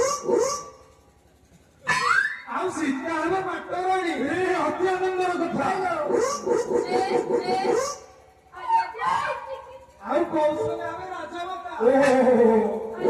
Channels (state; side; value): identical; both; correlation 1.00